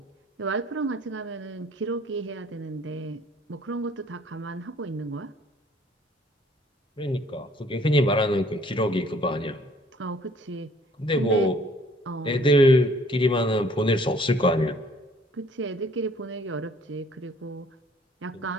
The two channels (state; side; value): normal; both; correlation 0.58